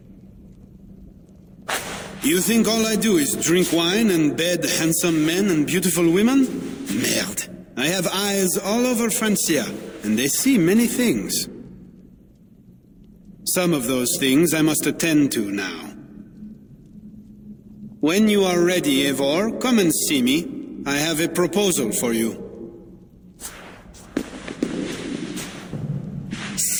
You think all I do is drink wine and bed handsome men and beautiful women? Merde. I have eyes all over Francia, and they see many things. Some of those things I must attend to now. When you are ready, Eivor, come and see me. I have a proposal for you.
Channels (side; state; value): both; identical; correlation 1.00